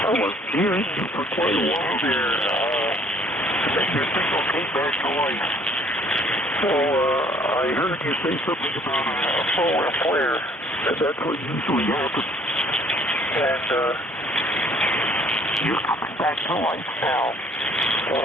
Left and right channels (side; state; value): both; normal; correlation 0.59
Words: I was hearing you for quite a while there. Then your signal came back to life. So I heard you say something about a forward flare, and that's what usually happens. And you're coming back to life now.